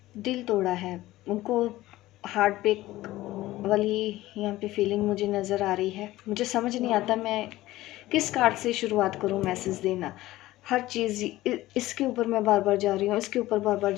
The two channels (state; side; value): quieter; right; 16.7 dB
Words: तोड़ा है, उनको हार्ट ब्रेक वाली यहाँ पे फीलिंग मुझे नज़र आ रही है। मुझे समझ नहीं आता मैं किस कार्ड से शुरुआत करूँ मैसेज देना। हर चीज़ इसके ऊपर मैं बार बार जा रही हूँ, इसके ऊपर बार बार